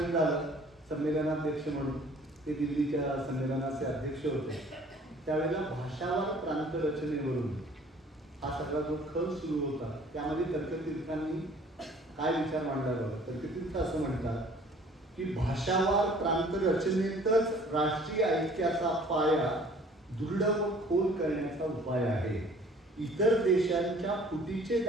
झालं संमेलनाध्यक्ष म्हणून, ते दिल्लीच्या संमेलनाचे अध्यक्ष होते, त्यावेळेला भाषावार प्रांत रचनेवरून हा सगळा जो खल सुरू होता त्यामध्ये तर्कतीर्थांनी काय विचार मांडला बघा. तर्कतीर्थ असं म्हणतात की भाषावार प्रांत रचनेतच राष्ट्रीय ऐक्याचा पाया दृढ व खोल करण्याचा उपाय आहे. इतर देशांच्या फुटीचे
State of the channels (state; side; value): normal; both; correlation 0.53